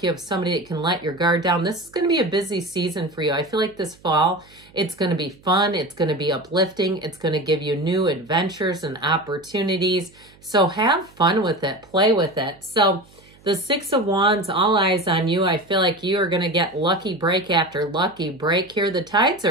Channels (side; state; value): right; noise; hum, 27 dB below the sound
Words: you have somebody that can let your guard down. This is going to be a busy season for you. I feel like this fall, it's going to be fun. It's going to be uplifting. It's going to give you new adventures and opportunities. So have fun with it. Play with it. So the Six of Wands, all eyes on you. I feel like you are going to get lucky break after lucky break here. The tides